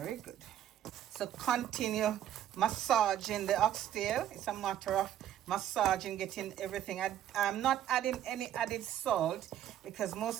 good. So continue massaging the oxtail. It's a matter of massaging, getting everything. I'm not adding any added salt because most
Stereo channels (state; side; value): quieter; left; 11.3 dB